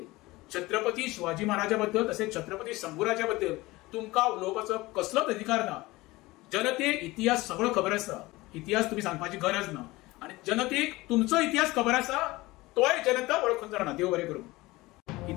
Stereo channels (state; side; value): quieter; right; 20.3 dB